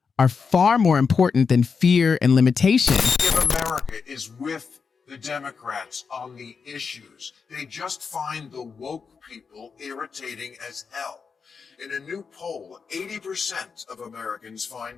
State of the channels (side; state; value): right; quieter; 5.5 dB